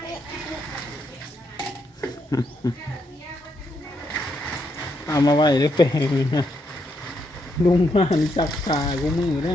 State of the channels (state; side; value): normal; both; correlation 0.78